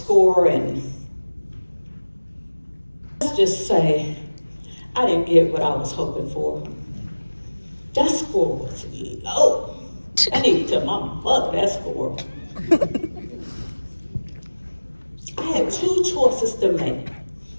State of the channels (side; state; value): both; inverted; correlation -1.00